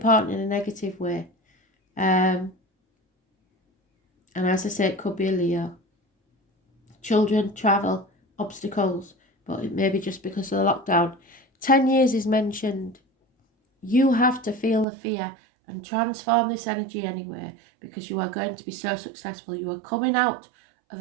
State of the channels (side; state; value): left; drops out; at 14.9 s